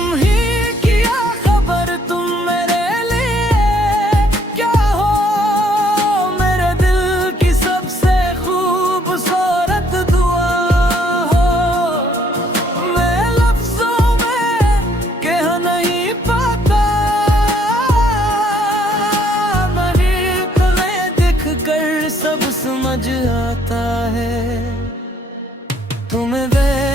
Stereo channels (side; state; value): both; normal; correlation 0.66